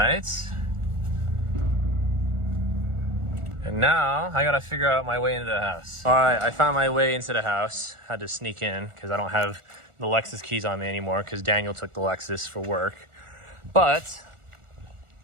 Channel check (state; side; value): late; left; 1.4 ms